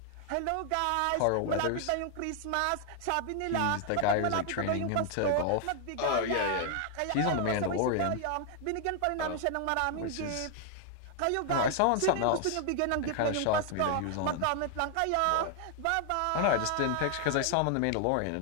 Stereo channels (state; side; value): different; both; correlation 0.00